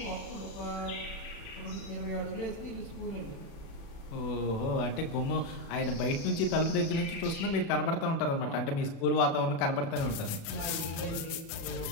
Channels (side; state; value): right; late; 37 ms